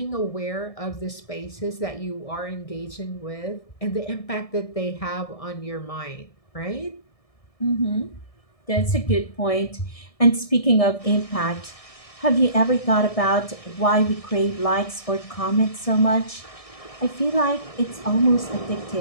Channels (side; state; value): right; late; 1.6 ms